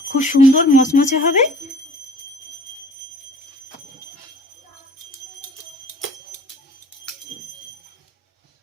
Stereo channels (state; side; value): normal; both; correlation 0.48